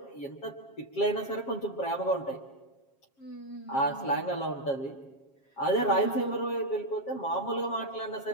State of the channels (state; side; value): late; right; 7.4 ms